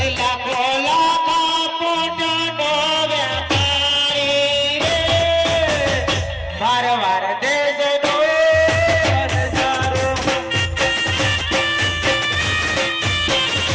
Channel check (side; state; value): both; identical; correlation 1.00